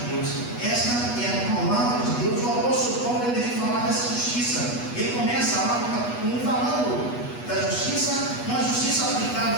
Deus, essa é a palavra de Deus. O apóstolo Paulo ele vem falar dessa justiça. Ele começa lá no capítulo 1 falando da justiça, uma justiça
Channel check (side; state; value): right; late; 8.2 ms